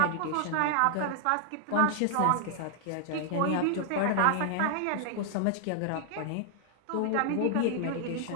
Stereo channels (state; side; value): different; both; correlation -0.01